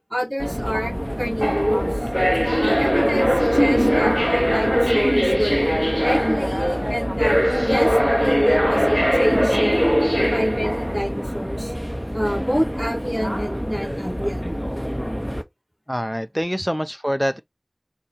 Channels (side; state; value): both; identical; correlation 1.00